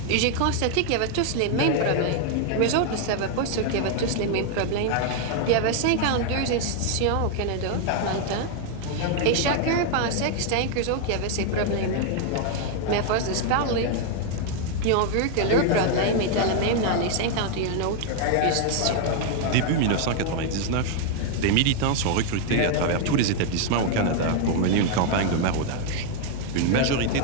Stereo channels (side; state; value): both; different; correlation 0.00